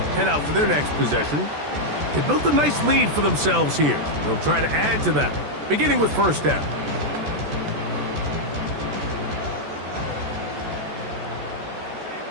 head out for their next possession. They built a nice lead for themselves here. They'll try to add to that, beginning with first down.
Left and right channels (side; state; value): left; late; 14 ms